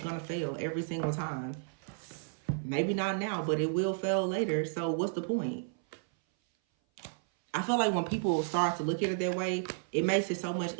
going to fail every single time. Maybe not now, but it will fail later. So what's the point? I feel like when people start to look at it that way, it makes it so much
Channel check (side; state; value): left; silent; 56 dB below the other